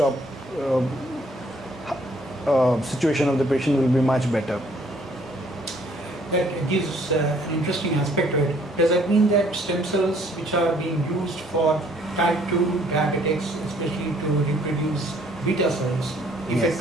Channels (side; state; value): both; normal; correlation 0.62